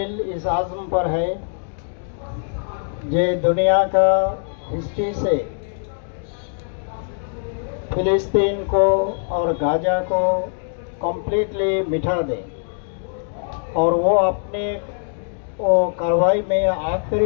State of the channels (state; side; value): silent; right; digital silence